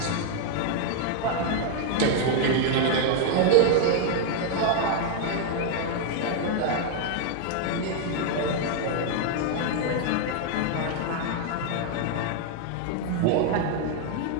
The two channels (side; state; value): both; different; correlation 0.00